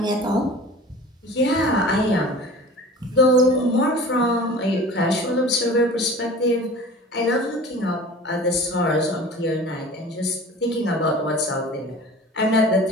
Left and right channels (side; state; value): both; normal; correlation 0.40